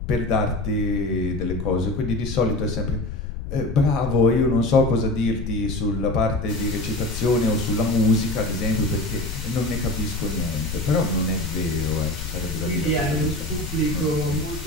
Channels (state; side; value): noise; left; rumble, 7 dB below the sound